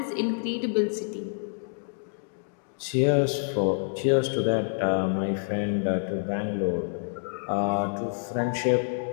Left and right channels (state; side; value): silent; right; digital silence